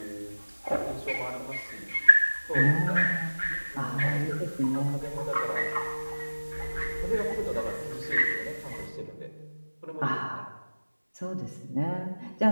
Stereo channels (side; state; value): both; inverted; correlation -1.00